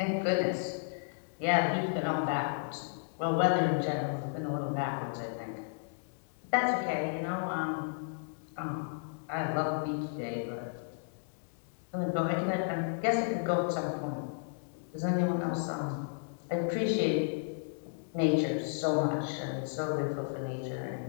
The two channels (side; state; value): right; silent; digital silence